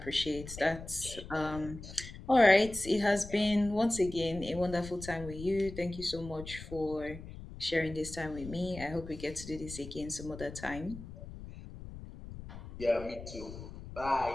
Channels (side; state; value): left; noise; rumble, 12 dB below the sound